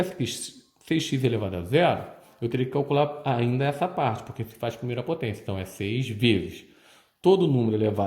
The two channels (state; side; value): identical; both; correlation 1.00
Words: aqui 6x elevado a 0, eu teria que calcular ainda essa parte, porque se faz primeira potência. Então, é 6 vezes. Todo número